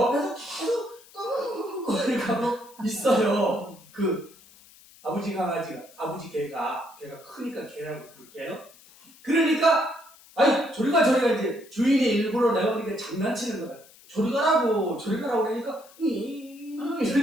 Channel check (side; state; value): left; noise; hiss, 24 dB below the sound